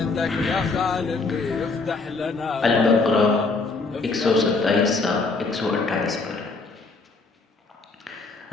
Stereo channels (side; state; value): right; quieter; 3.9 dB